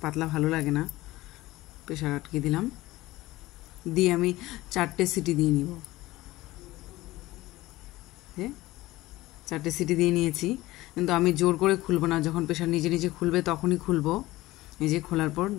পাতলা ভালো লাগে না। প্রেসার আটকে দিলাম, দিয়ে আমি 4টে সিটি দিয়ে নিব। 4টে সিটি দিয়ে নিয়েছি, কিন্তু আমি জোর করে খুলবো না। যখন প্রেসার নিজে নিজে খুলবে তখনই খুলবো। এই যে খোলার পর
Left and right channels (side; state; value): right; quieter; 18.1 dB